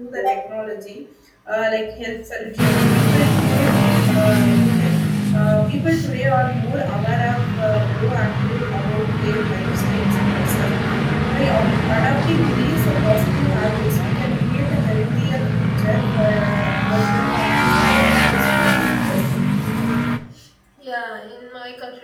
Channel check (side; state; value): both; identical; correlation 1.00